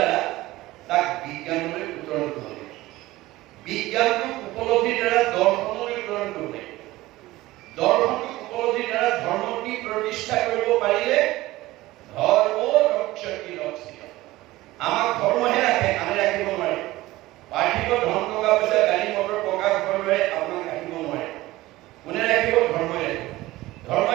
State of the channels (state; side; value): quieter; left; 17.9 dB